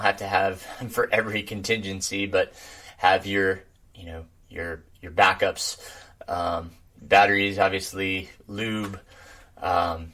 have to have for every contingency, but have your backups, batteries, obviously, lube,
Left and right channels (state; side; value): identical; both; correlation 1.00